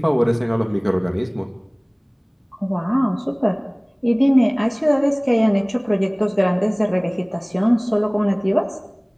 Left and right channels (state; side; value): identical; both; correlation 1.00